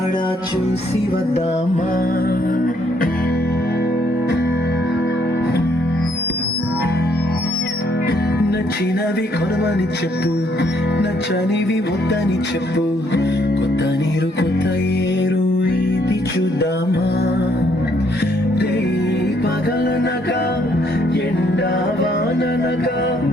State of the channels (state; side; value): normal; both; correlation 0.69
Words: చూసి వద్దామా. నచ్చినవి కొనమని చెప్పు, నచ్చనివి వద్దని చెప్పు, కొత్త నీరు కొత్త ఏరు ఇది చూద్దామా. రే పగలనగా ఎండా వాననగా